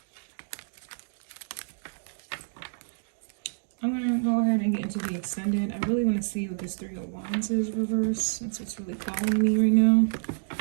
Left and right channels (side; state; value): left; silent; digital silence